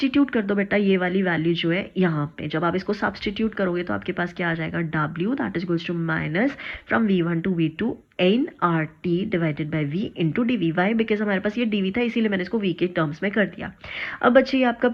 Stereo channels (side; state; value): both; identical; correlation 1.00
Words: कर दो बेटा ये वाली वैल्यू जो है यहाँ पे, जब आप इसको सब्सटीट्यूट करोगे तो आपके पास क्या आ जाएगा, W that is equals to minus from V one to V two N R T divided by V into D V. Why, because हमारे पास ये डी वी था इसीलिए मैंने इसको वी के टर्म्स में कर दिया. अब बच्चे ये आपका